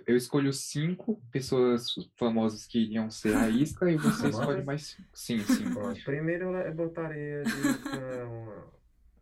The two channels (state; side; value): identical; both; correlation 1.00